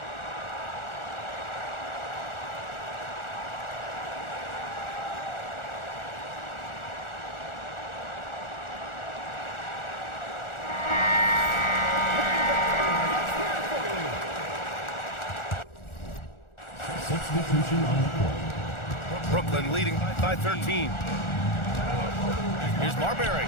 Substitution on the court. Brooklyn leading by 13. Here's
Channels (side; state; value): right; late; 1.4 ms